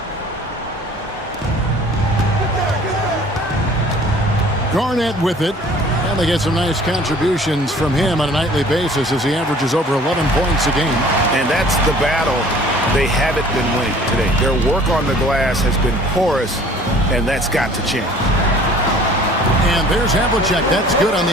Garnett with it, and they get some nice contributions from him on a nightly basis as he averages over 11 points a game. And that's the battle they haven't been winning today. Their work on the glass has been porous, and that's got to change. And there's Havlicek. That's good on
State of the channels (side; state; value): both; normal; correlation 0.51